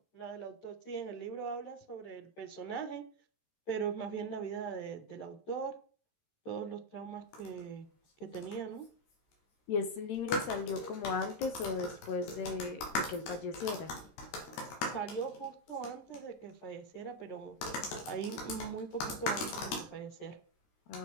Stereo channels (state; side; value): late; right; 13 ms